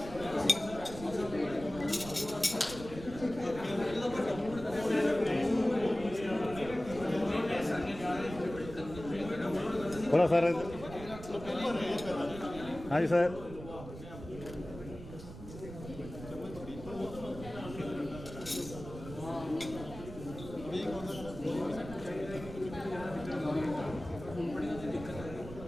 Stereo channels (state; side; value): noise; right; rumble, 12 dB below the sound